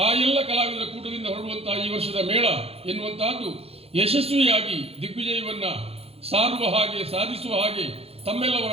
ಆ ಎಲ್ಲ ಕಲಾವಿದರ ಕೂಟದಿಂದ ಹೊರಡುವಂತಹ ಈ ವರ್ಷದ ಮೇಳ ಎನ್ನುವಂತಹದ್ದು ಯಶಸ್ವಿಯಾಗಿ ದಿಗ್ವಿಜಯವನ್ನ ಸಾರುವ ಹಾಗೆ ಸಾಧಿಸುವ ಹಾಗೆ ತಮ್ಮೆಲ್ಲವರ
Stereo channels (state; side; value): late; left; 0.29 ms